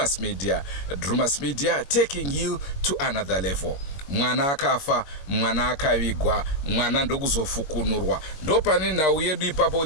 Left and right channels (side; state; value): right; late; 21 ms